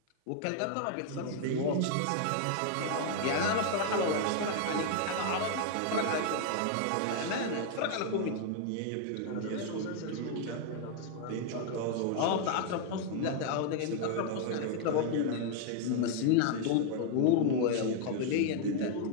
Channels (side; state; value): both; different; correlation 0.00